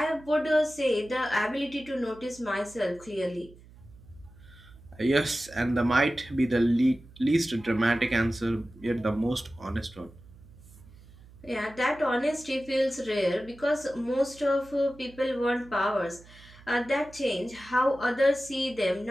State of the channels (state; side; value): noise; right; hum, 22 dB below the sound